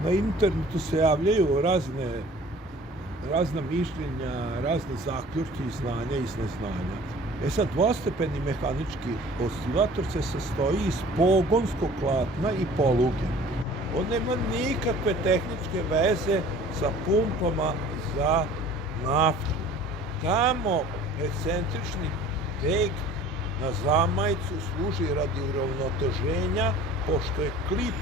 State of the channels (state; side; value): normal; both; correlation 0.47